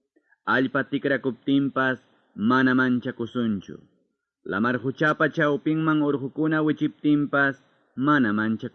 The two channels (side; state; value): both; identical; correlation 1.00